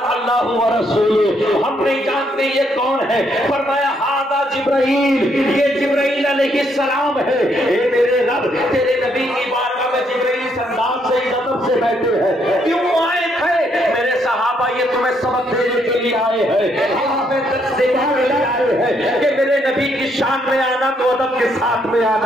اللہ ورسولہ، ہم نہیں جانتے یہ کون ہے۔ فرمایا ھذا جبرائیل، یہ جبرائیل علیہ السلام ہے۔ اے میرے رب، تیرے نبی کی بارگاہ میں جبرائیل اس انداز سے ادب سے بیٹھے ہیں، کیوں آئے تھے؟ میرے صحابہ یہ تمہیں سبق دینے کے لیے آئے ہیں، ہمیں درس دینے کے لیے آئے ہیں کہ میرے نبی کی شان میں آنا تو ادب کے ساتھ میں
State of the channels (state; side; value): normal; both; correlation 0.73